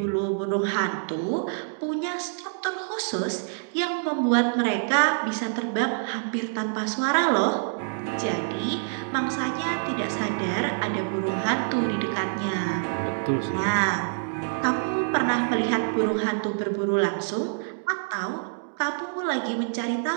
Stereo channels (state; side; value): silent; left; digital silence